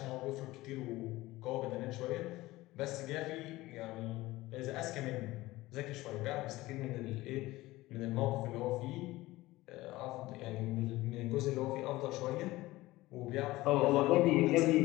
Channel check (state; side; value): quieter; right; 18.5 dB